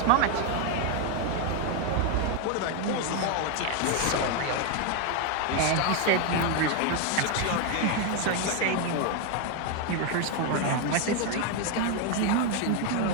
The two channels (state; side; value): different; both; correlation 0.01